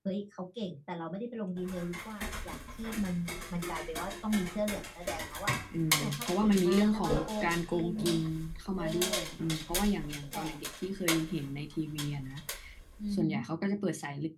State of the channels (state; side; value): identical; both; correlation 1.00